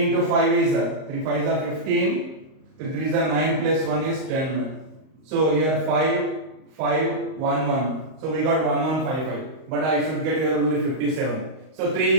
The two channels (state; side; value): late; left; 38 ms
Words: into 5 is 3 5s are 15, 3 3s are 9 plus 1 is 10. So here 5, 5, 1, 1. So we got 1155, but I should get here only 57. So 3